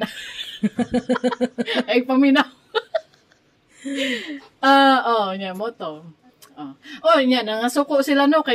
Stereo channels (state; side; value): identical; both; correlation 1.00